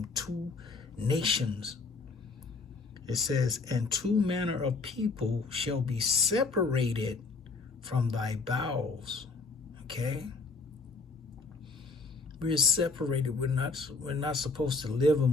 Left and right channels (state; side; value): quieter; right; 4.0 dB